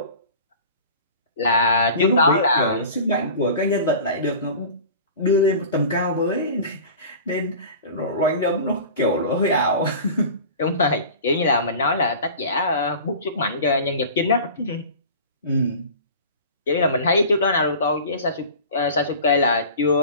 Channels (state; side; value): inverted; both; correlation -0.39